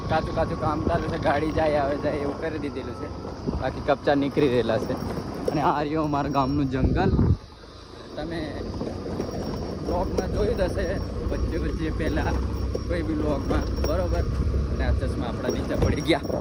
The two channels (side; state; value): both; identical; correlation 1.00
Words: કાચું કામ ચાલુ છે, ગાડી જાય આવે જાય એવું કરી દીધેલું છે. બાકી કપચા નીકળી રહેલા છે. અને આ રહ્યું અમારા ગામનું જંગલ. તમે બ્લોગમાં જોયું જ હશે વચ્ચે પહેલાં કોઈ બી બ્લોગમાં, બરાબર. અને આ ચશ્મા આપણા નીચે પડી ગયા.